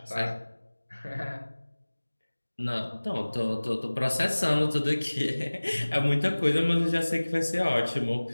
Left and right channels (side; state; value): both; inverted; correlation -1.00